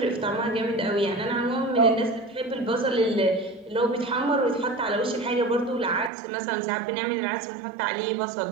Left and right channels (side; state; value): left; drops out; at 6.1 s